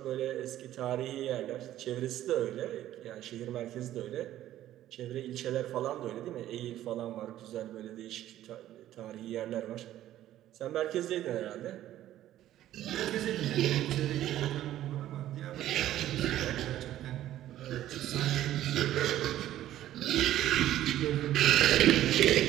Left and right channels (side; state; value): left; quieter; 13.1 dB